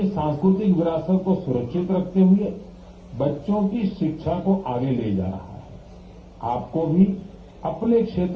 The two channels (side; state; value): both; identical; correlation 1.00